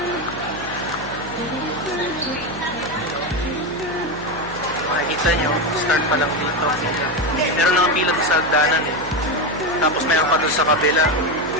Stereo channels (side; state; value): left; noise; hum, 15 dB below the sound